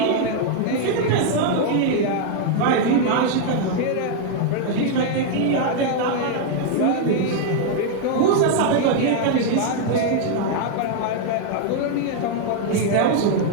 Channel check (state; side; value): different; both; correlation 0.00